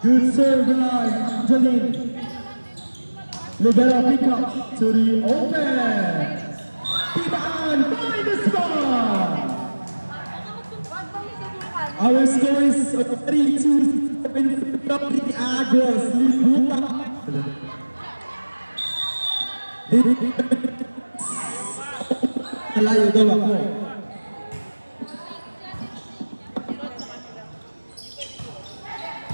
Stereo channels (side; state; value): both; inverted; correlation -1.00